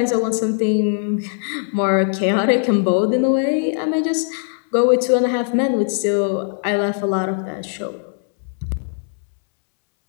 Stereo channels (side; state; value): right; silent; 66 dB below the other